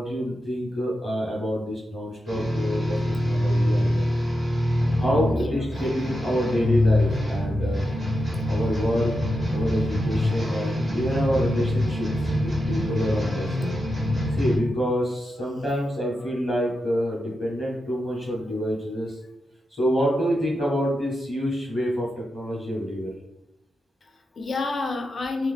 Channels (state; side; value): normal; both; correlation 0.88